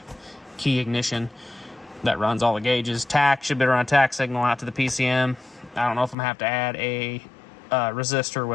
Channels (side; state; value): right; drops out; at 6.2 s